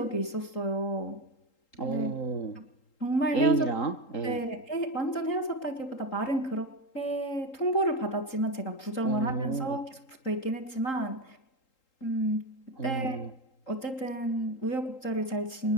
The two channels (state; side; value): late; right; 3.8 ms